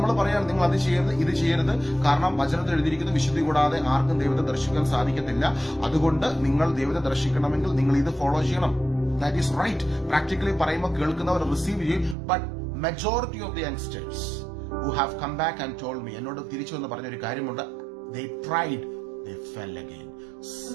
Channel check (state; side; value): drops out; left; at 12.2 s